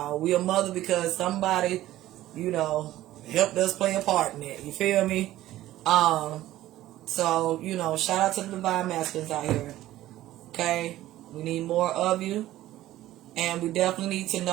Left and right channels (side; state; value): left; quieter; 14.8 dB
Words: We a mother because somebody, you know, helped us play a part in it. You feel me? So, you know, shout out to the divine masculines out here. Okay? We need more of you. And we definitely need to